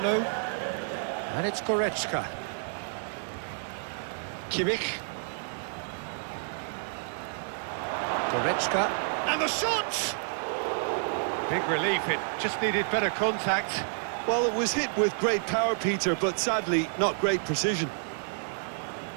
And it's Goretzka. Kimmich. Goretzka. And the shot! Big relief, it just needed better contact. Well, it was hit with great power, Peter, but sadly, not great precision.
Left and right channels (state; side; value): silent; left; 58 dB below the other